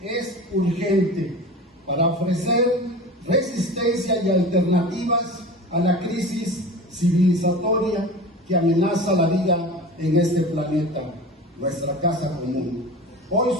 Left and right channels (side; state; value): both; normal; correlation 0.34